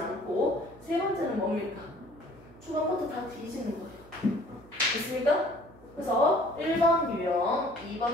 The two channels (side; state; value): right; noise; hum, 23 dB below the sound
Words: 세 번째는 뭡니까? 초반부터 다 뒤지는 거예요. 됐습니까? 그래서 1번 유형,